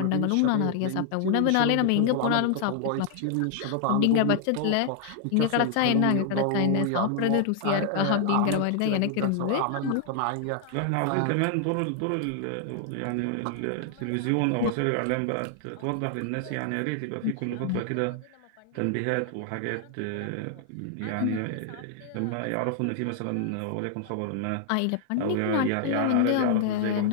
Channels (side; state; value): both; different; correlation 0.00